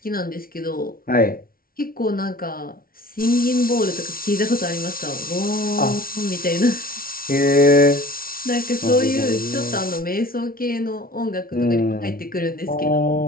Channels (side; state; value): right; late; 0.43 ms